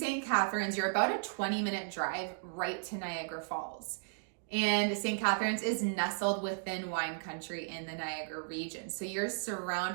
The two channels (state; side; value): silent; left; digital silence